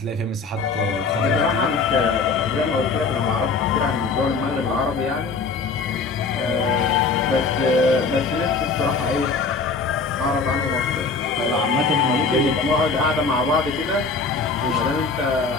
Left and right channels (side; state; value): right; quieter; 4.4 dB